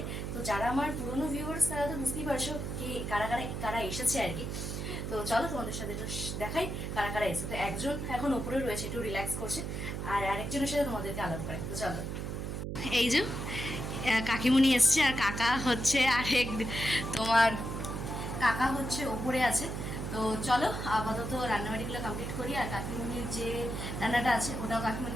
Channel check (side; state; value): right; noise; hum, 4 dB below the sound